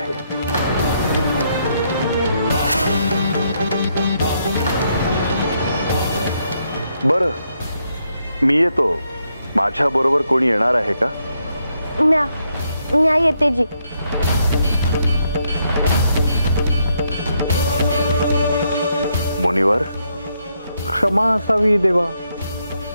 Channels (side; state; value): both; inverted; correlation -0.77